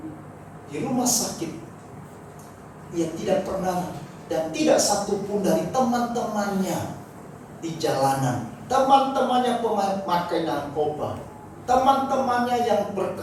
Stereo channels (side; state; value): both; identical; correlation 1.00